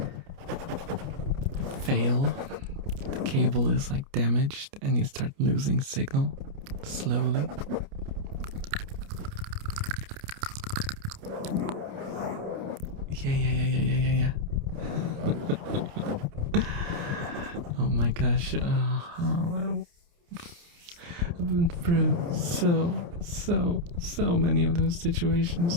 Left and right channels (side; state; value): left; late; 29 ms